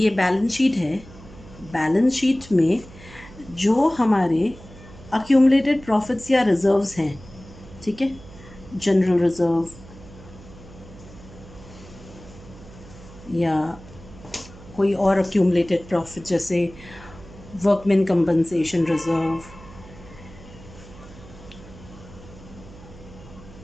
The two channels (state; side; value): noise; right; hum, 19 dB below the sound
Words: बैलेंस शीट है, बैलेंस शीट में जो हमारे अक्यूमुलेटेड प्रॉफिट्स या रिजर्व्स हैं, ठीक है, जनरल रिजर्व या कोई और अक्यूमुलेटेड प्रॉफिट जैसे वर्कमैन कंपनसेशन रिजर्व,